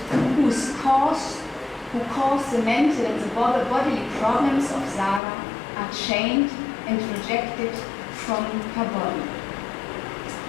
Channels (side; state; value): right; drops out; at 5.2 s